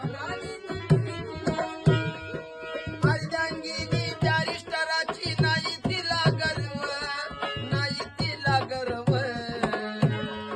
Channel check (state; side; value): identical; both; correlation 1.00